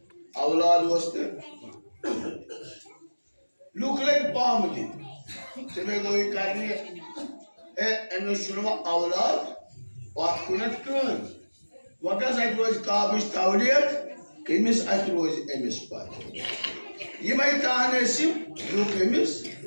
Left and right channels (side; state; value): both; inverted; correlation -1.00